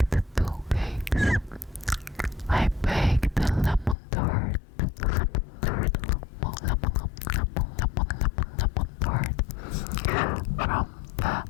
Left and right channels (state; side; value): drops out; right; at 4.0 s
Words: 2 cakes. I baked a lemon tart from the